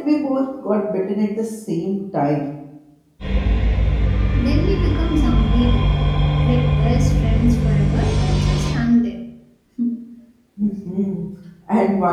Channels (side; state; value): both; identical; correlation 1.00